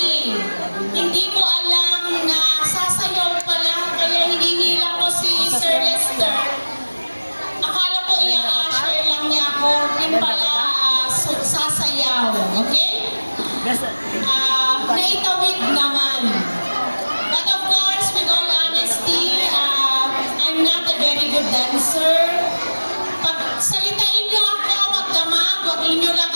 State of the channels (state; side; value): inverted; both; correlation -1.00